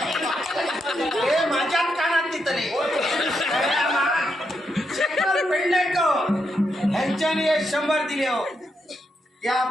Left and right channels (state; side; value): normal; both; correlation 0.82